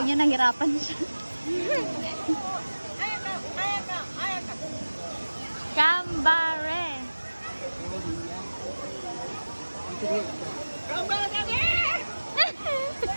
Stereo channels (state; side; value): inverted; both; correlation -1.00